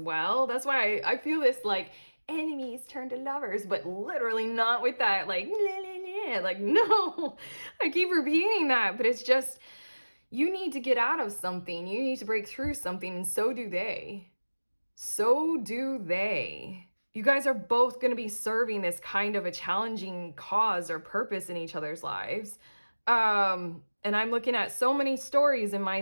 That's why I feel this like enemies turn to lovers, but literally not with that like like no. I keep repeating that, but it's just, you need to get out of something, you need to break through something, and so do they. So do they. You guys are both going to be serving this kind of a challenging cause or purpose in each other's lives. And I'm looking at so many stories in my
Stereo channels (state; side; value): inverted; both; correlation -1.00